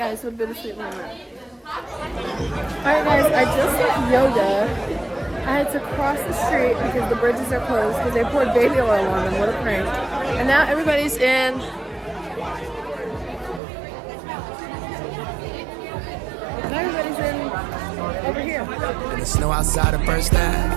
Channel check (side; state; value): left; drops out; at 13.6 s